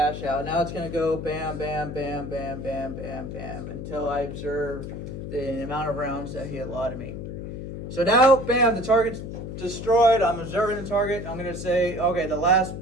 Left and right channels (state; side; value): noise; left; hum, 8 dB below the sound